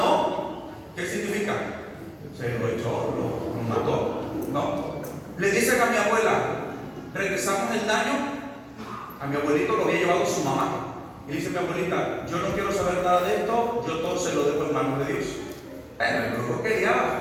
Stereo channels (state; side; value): identical; both; correlation 1.00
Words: ¿qué significa? Se lo echó, lo mató. No. Le dicen a mi abuela, regresamos el daño. A mi abuelito lo había llevado su mamá. Y dice mi abuelita, yo no quiero saber nada de esto, yo todo se lo dejo en manos de Dios. Bueno, el brujo